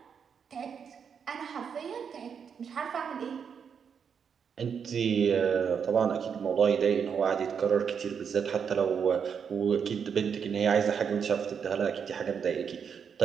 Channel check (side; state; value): left; quieter; 6.9 dB